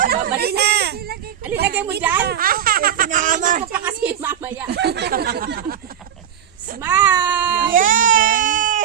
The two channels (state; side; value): quieter; left; 9.3 dB